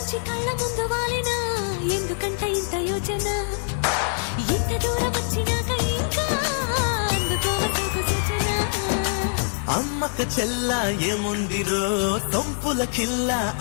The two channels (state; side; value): silent; right; digital silence